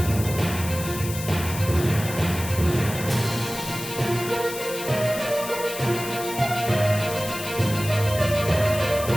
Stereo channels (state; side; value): noise; left; hiss, 9 dB below the sound